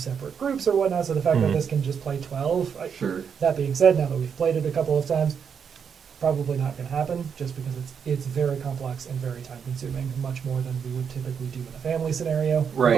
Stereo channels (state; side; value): quieter; left; 7.0 dB